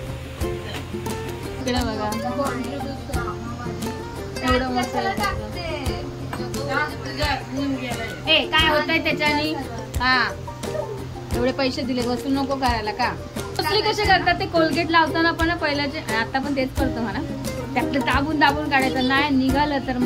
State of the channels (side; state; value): both; identical; correlation 1.00